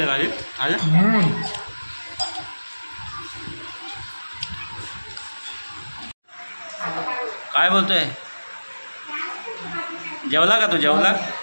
भाजी आज। काय बोलतोय, जेवला का तू? जेवला?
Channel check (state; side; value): inverted; both; correlation -1.00